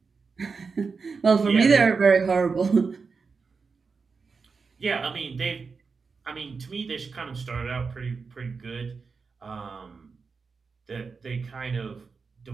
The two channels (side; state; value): left; quieter; 4.9 dB